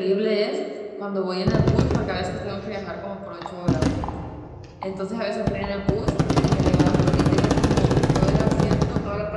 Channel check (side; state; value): both; identical; correlation 1.00